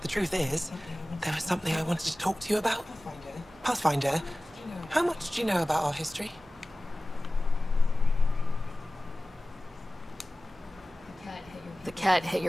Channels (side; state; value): both; normal; correlation 0.97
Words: the truth is, there was something I wanted to talk to you about. Pathfinder, how much do you know about our history? The cat hit